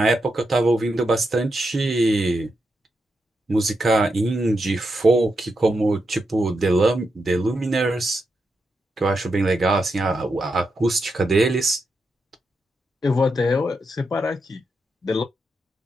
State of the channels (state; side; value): normal; both; correlation 0.85